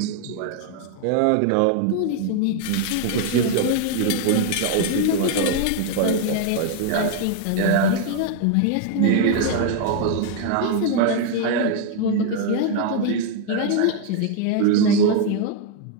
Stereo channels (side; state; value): both; different; correlation 0.01